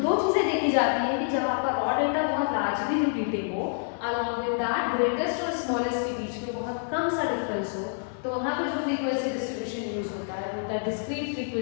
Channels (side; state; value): right; silent; digital silence